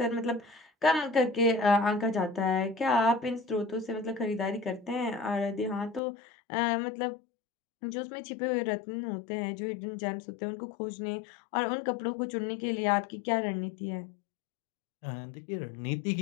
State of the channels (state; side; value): drops out; right; at 6.0 s